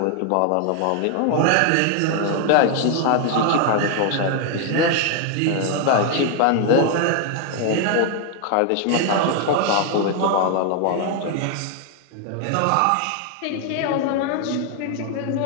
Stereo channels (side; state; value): both; different; correlation 0.00